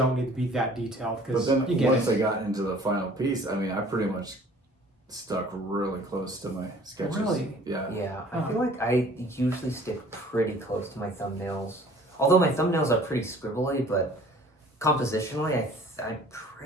need to be that detailed But because then you get once it. I got into the final piece, I mean, I pretty much stuck really close to my sketches. Really? Yeah. Yeah. I Huh. feel like I usually stick pretty close to my thumbnails. Although my thumbnails are pretty scribbly, but compositionally, I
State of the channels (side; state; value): both; normal; correlation 0.51